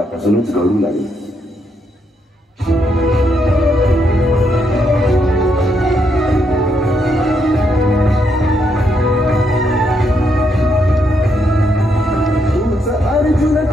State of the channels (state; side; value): normal; both; correlation 0.77